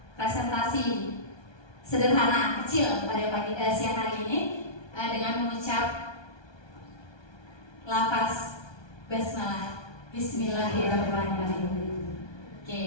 presentasi sederhana kecil pada siang hari ini dengan mengucap lafaz basmalah. Bismillahirrahmanirrahim.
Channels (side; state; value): right; late; 1.2 ms